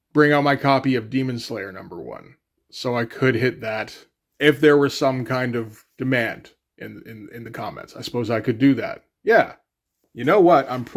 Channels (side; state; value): both; identical; correlation 1.00